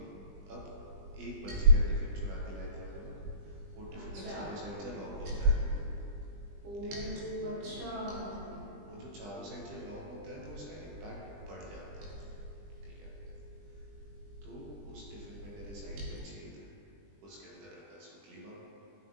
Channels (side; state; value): left; late; 20 ms